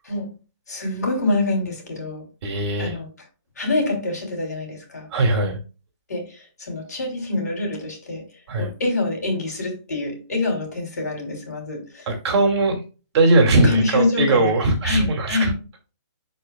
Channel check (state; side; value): inverted; both; correlation -0.60